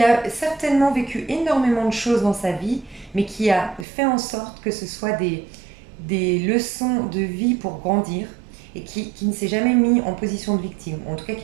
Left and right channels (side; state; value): left; drops out; at 3.9 s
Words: a certainement vécu énormément de choses dans sa vie, mais qui a fait en sorte que ce soit des leçons de vie pour grandir et qui ne s'est jamais mis en position de victime, en tout cas